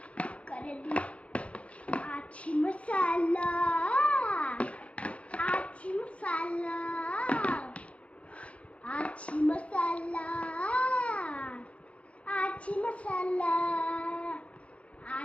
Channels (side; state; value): right; late; 0.063 ms